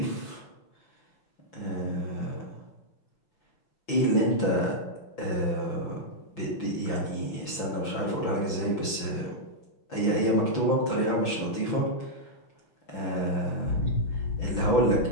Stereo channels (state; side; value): late; right; 5.9 ms